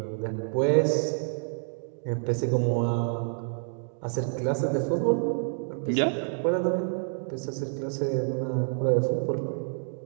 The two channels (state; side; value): silent; left; digital silence